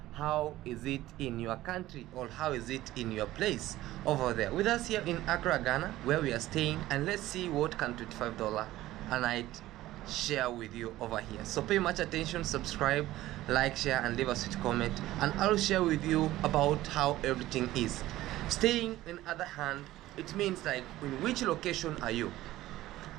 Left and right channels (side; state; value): left; quieter; 15.8 dB